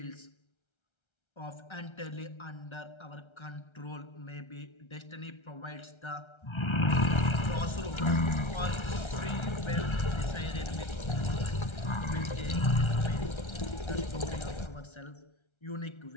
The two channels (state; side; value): late; right; 1.3 ms